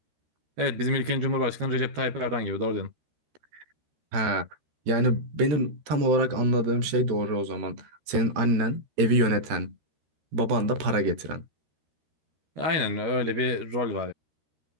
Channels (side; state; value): left; late; 13 ms